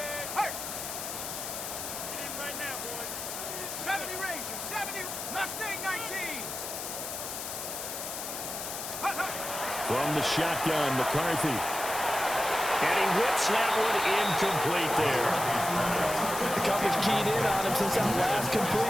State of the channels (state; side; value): noise; left; hiss, 6 dB below the sound